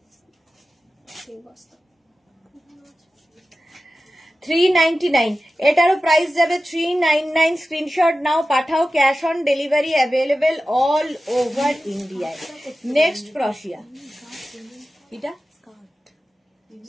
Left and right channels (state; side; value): normal; both; correlation 0.94